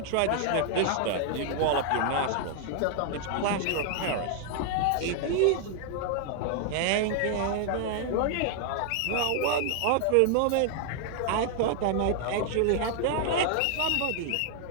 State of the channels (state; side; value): different; both; correlation 0.00